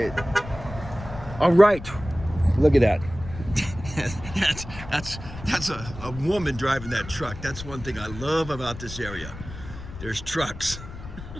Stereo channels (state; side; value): noise; left; rumble, 12 dB below the sound